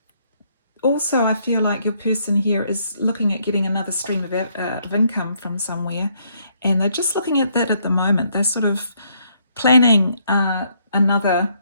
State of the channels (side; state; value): both; inverted; correlation -0.71